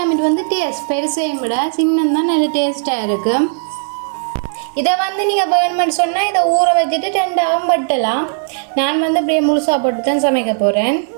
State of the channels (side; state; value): left; silent; 69 dB below the other